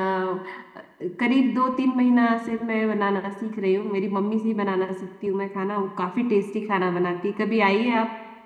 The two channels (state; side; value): identical; both; correlation 1.00